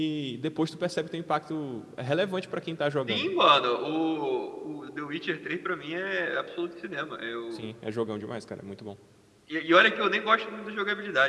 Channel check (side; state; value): both; identical; correlation 1.00